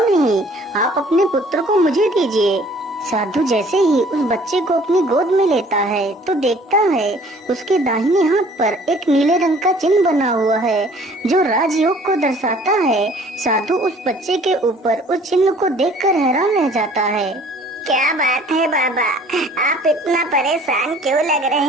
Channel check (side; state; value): both; normal; correlation 0.54